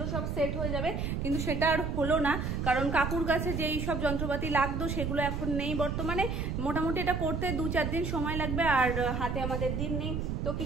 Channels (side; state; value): right; noise; rumble, 2 dB below the sound